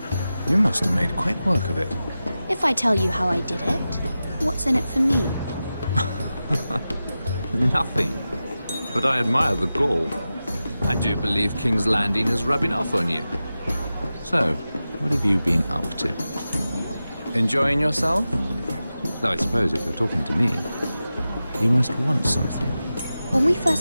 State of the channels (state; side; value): inverted; both; correlation -0.93